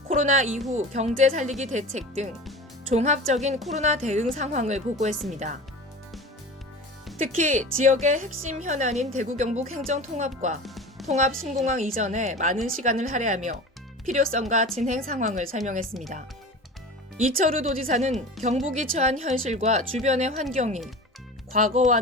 코로나 이후 경제 살리기 대책 등 종합적인 코로나 대응 상황을 보고했습니다. 특히 지역의 핵심 현안인 대구 경북 행정 통합과 통합 신공항 이전에 많은 시간을 할애하며 필요성과 진행 상황을 설명했습니다. 이철우 도지사는 경북이 처한 현실과 주변의 환경이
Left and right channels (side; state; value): both; normal; correlation 0.34